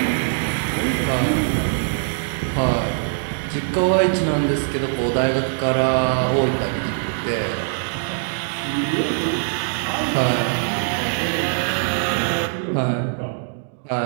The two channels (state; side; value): silent; left; digital silence